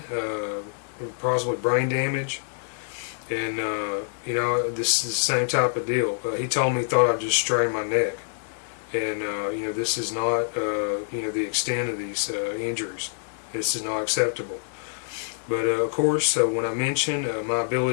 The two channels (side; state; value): right; silent; digital silence